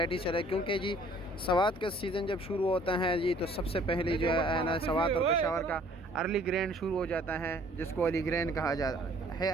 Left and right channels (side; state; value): both; normal; correlation 0.56